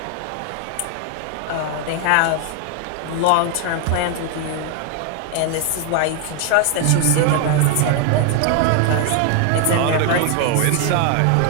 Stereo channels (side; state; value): both; different; correlation 0.00